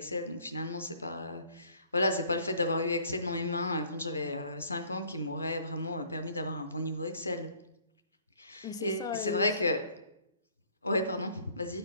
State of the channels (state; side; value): inverted; both; correlation -0.58